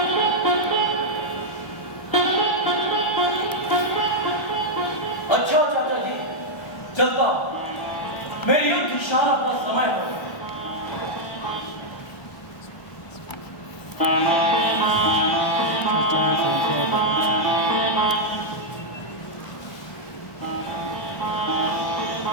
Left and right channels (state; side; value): late; right; 1.3 ms